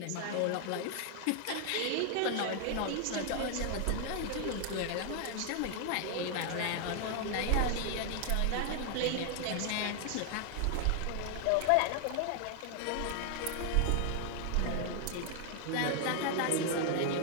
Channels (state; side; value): different; both; correlation 0.00